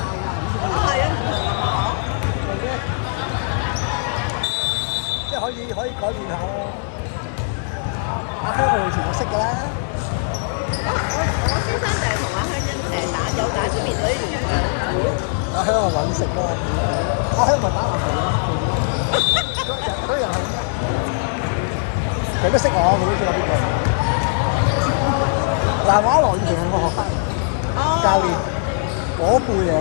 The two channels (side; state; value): right; silent; 65 dB below the other